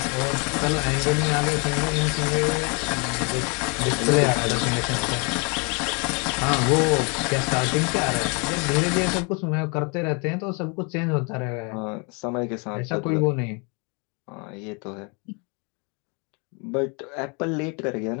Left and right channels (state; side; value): quieter; right; 33.6 dB